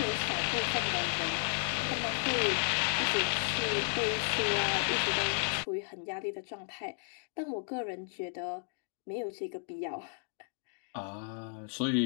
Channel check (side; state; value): right; silent; 55 dB below the other